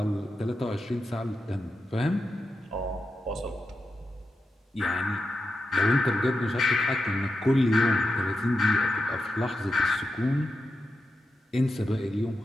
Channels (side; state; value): both; normal; correlation 0.89